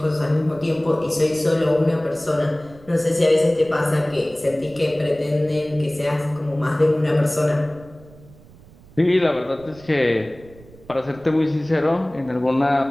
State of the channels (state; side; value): noise; right; rumble, 23 dB below the sound